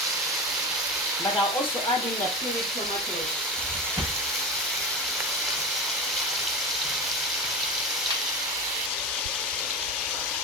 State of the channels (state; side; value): normal; both; correlation 0.24